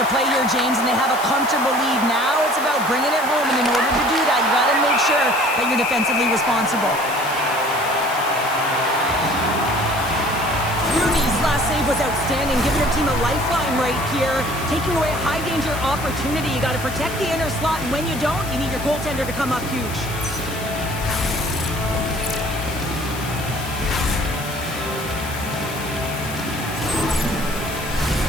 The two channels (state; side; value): noise; left; hiss, 12 dB below the sound